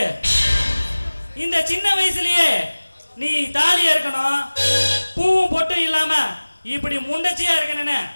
இந்த சின்ன வயசுலயே நீ தாலியா இருக்கணும், பூவும் பொட்டும் இல்லாம இப்படி முண்டச்சியா இருக்கணும்னு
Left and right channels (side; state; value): both; inverted; correlation -1.00